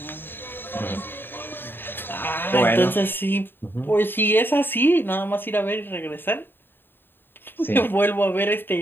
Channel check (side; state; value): right; late; 0.097 ms